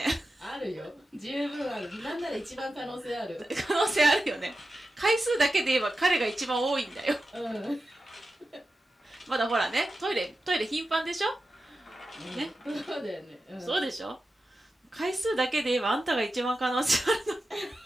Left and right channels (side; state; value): both; normal; correlation 0.92